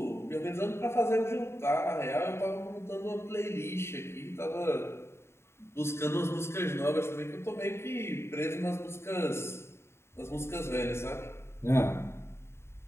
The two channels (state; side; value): late; right; 0.12 ms